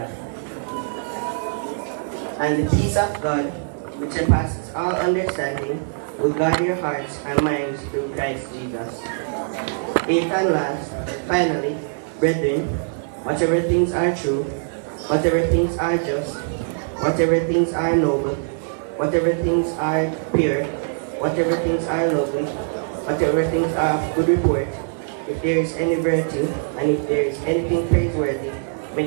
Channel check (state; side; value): silent; left; 64 dB below the other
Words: And the peace of God, which surpasses all understanding, will guard your hearts and minds through Christ Jesus. Eighth and last, finally, brethren, whatever things are true, whatever things are just, whatever things are noble, whatever things are pure, whatever things are lovely, whatever things are of good report, if there is any virtue, and if there is anything praiseworthy,